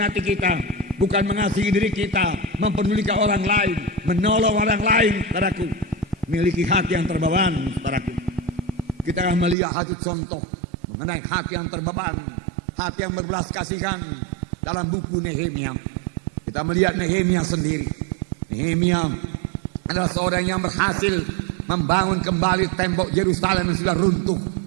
kita, bukan mengasihi diri kita, mempedulikan orang lain, menolong orang lain, saudaraku. Miliki hati yang terbeban, saudaraku. Kita akan melihat satu contoh mengenai hati yang terbeban, hati yang berbelas kasihan dalam buku Nehemia. Kita melihat Nehemia sendiri. Nehemia adalah seorang yang berhasil membangun kembali tembok Yerusalem yang sudah runtuh.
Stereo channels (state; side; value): drops out; left; at 9.6 s